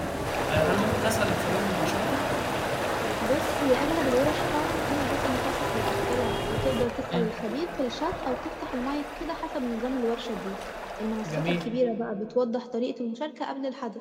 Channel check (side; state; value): both; identical; correlation 1.00